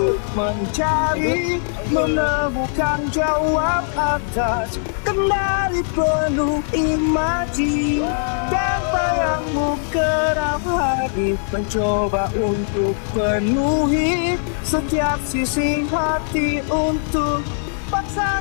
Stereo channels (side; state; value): right; silent; digital silence